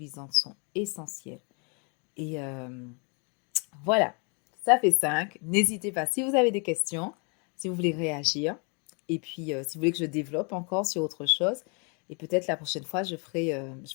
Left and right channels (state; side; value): quieter; right; 35.3 dB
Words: sont essentielles. Et voilà, ça fait 5. N'hésitez pas si vous avez des questions, si vous voulez réagir. Et puis si vous voulez que je développe encore sur autre chose. Et peut-être la prochaine fois, je ferai